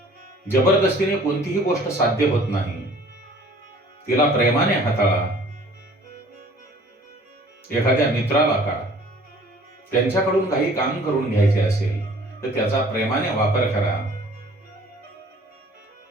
जबरदस्तीने कोणतीही गोष्ट साध्य होत नाही. तिला प्रेमाने हाताळा. एखाद्या मित्राला का त्यांच्याकडून काही काम करून घ्यायचे असेल तर त्याचा प्रेमाने वापर करा.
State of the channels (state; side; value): normal; both; correlation 0.52